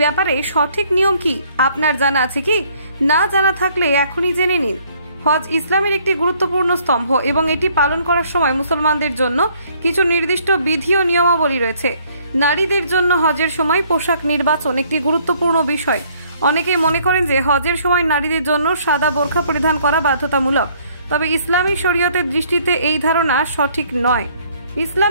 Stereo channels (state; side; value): inverted; both; correlation -0.63